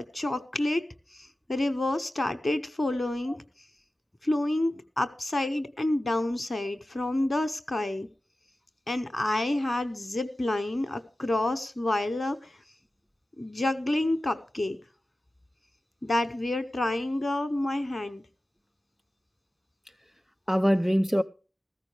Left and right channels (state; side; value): normal; both; correlation 0.95